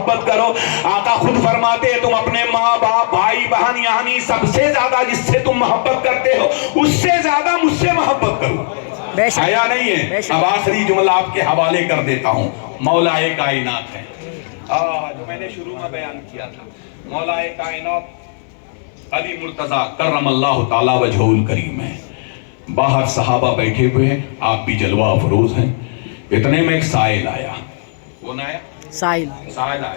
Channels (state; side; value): silent; right; 60 dB below the other